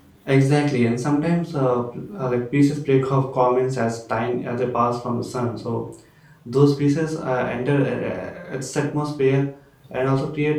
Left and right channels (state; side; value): identical; both; correlation 1.00